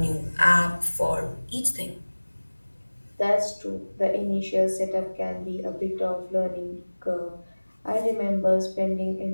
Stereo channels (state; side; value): inverted; both; correlation -1.00